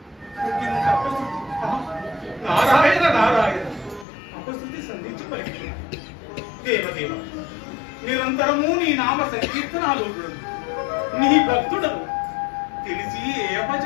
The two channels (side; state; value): right; drops out; at 4.0 s